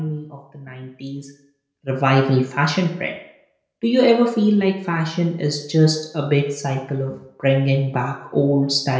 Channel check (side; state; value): both; identical; correlation 1.00